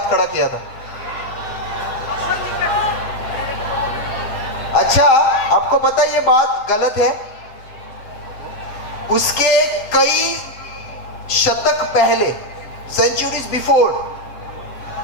खड़ा किया था। अच्छा, आपको पता है ये बात गलत है? उसके कई शतक पहले, सेंचुरीज बिफोर,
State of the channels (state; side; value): late; right; 7.7 ms